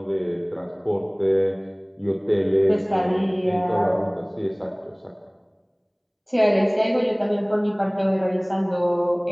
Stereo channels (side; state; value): both; identical; correlation 1.00